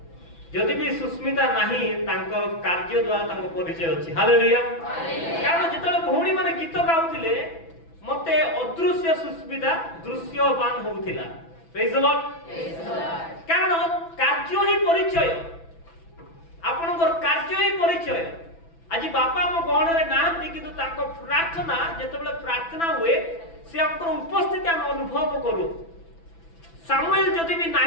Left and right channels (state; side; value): late; right; 6.0 ms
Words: जदि भी सुस्मिता नाही तांकर कार्य द्वारा तांको परिचय अछि। हालेलुया। कारण जेतले भौणी माने गीत गाउथिले मते अदृश्य सुस्मिता दृश्यवान होउथिला। Praise the Lord. कारण कार्य ही परिचय, आपनकर कार्य ही परिचय। आज बापा हम गहण रे नाहंती, किंतु तांको प्रार्थना जेतबेले प्रार्थना हुए से हमकर उपस्थिति हम अनुभव करू। सामुएल जदि भी